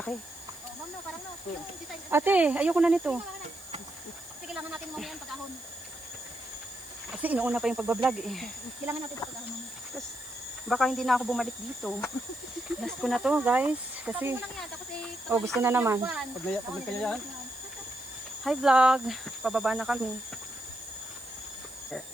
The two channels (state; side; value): noise; right; hiss, 19 dB below the sound